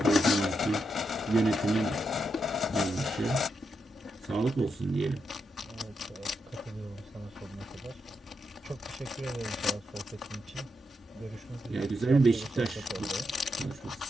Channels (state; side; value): normal; both; correlation 0.83